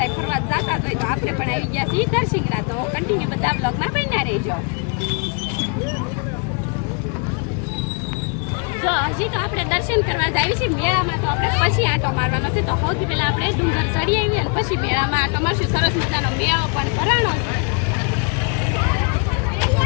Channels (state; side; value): quieter; right; 36.8 dB